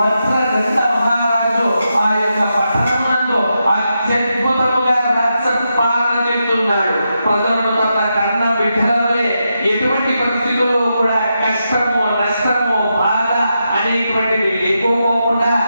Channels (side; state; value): both; inverted; correlation -0.86